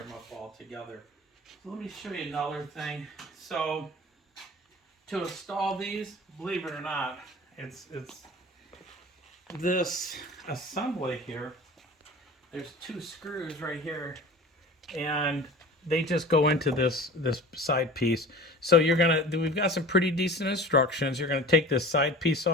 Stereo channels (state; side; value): normal; both; correlation 0.39